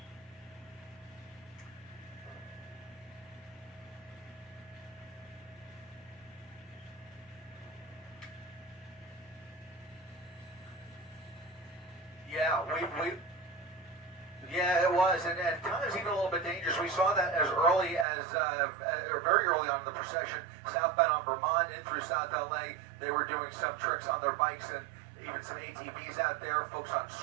Yeah, it was, and times even a little bit dangerous. We saw that as early as, or very early on in the procession, southbound on Vermont in through South LA. They were doing some tricks on their bikes and even some ATVs out there, folks on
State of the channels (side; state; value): left; drops out; at 18.1 s